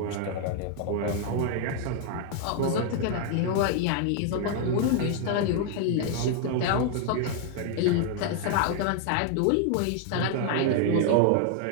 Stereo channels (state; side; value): different; both; correlation 0.00